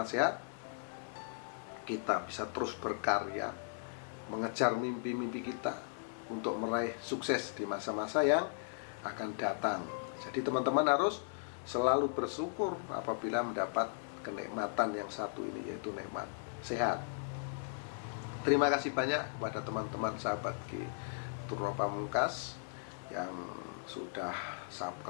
sehat kita bisa terus berkarya, mengejar mimpi-mimpi kita untuk meraih sukses di masa-masa yang akan datang. Jadi teman-teman harus selalu bersyukur apabila mendapat kenikmatan yang satu ini, yaitu nikmat sehat. Terima kasih banyak kepada teman-teman sahabat Truno Pamungkas yang sudah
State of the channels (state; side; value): silent; right; digital silence